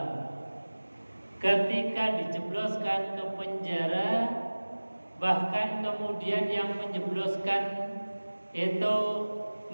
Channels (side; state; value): both; inverted; correlation -1.00